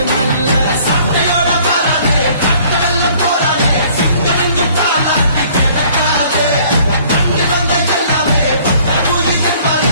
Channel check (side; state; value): both; inverted; correlation -0.56